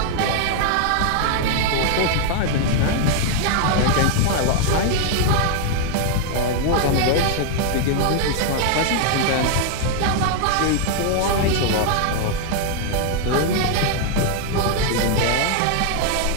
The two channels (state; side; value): different; both; correlation 0.00